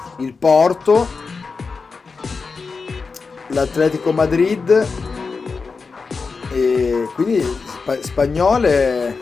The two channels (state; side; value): quieter; right; 4.7 dB